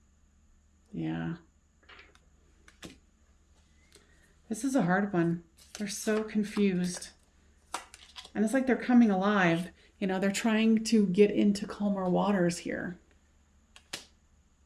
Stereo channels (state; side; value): identical; both; correlation 1.00